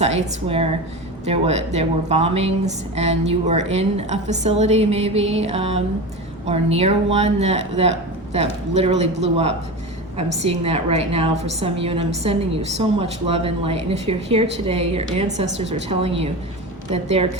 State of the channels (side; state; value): both; normal; correlation 0.26